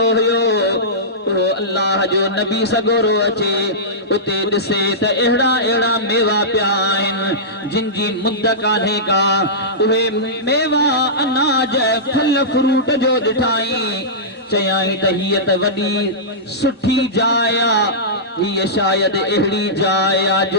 हुयो, वो अल्लाह जो नबी सगोरो अचे उते दिसे त एड़ा एड़ा मेवा पिया आहिनि जिन जी मुद्द कान्हे का उहे मेवा अनाज फल फ्रूट जो ॾिठाई चयाई त हीअ त वॾी सुठी जाइ हीअ शायद अहिड़ी जाइ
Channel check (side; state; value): both; normal; correlation -0.16